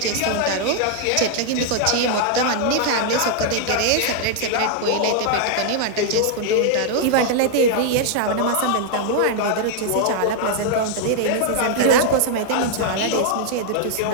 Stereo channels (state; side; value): different; both; correlation 0.00